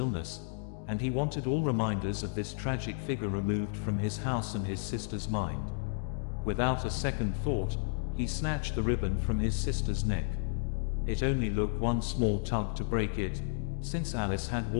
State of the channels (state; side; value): silent; right; digital silence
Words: and he wanted all reminders of this tragic figure removed from his house and his sister's mind. Without a second thought, he snatched the ribbon from his sister's neck. It only took one small tug to break it, since Alice had